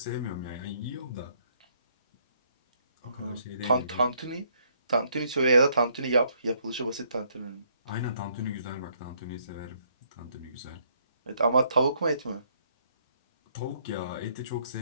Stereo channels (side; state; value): both; inverted; correlation -0.69